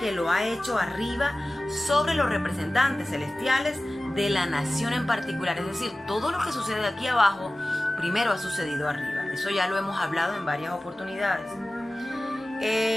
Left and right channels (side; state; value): both; normal; correlation 0.97